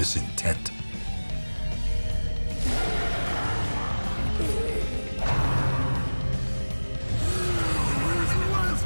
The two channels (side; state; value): both; inverted; correlation -1.00